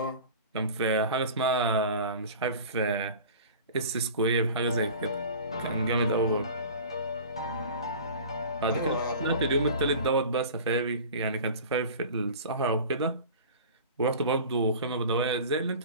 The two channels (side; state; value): both; inverted; correlation -0.39